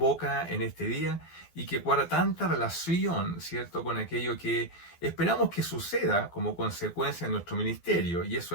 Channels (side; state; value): right; late; 12 ms